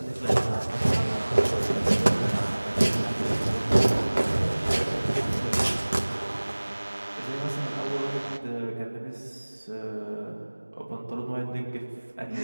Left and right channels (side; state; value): both; inverted; correlation -1.00